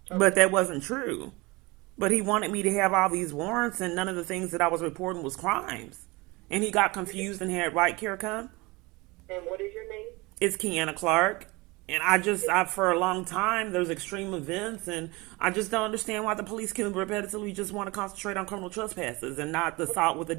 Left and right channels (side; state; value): left; quieter; 24.0 dB